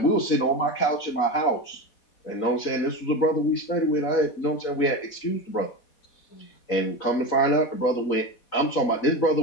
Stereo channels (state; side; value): late; right; 3.9 ms